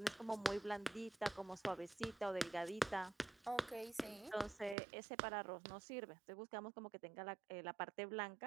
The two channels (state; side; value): drops out; left; at 4.8 s